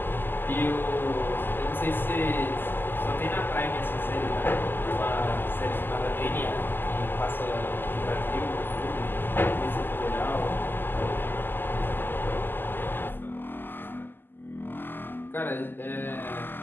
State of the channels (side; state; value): right; late; 0.094 ms